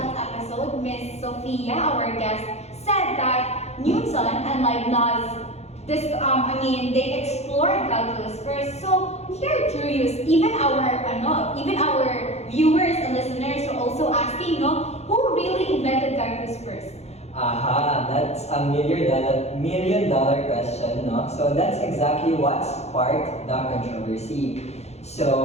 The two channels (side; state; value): right; late; 0.31 ms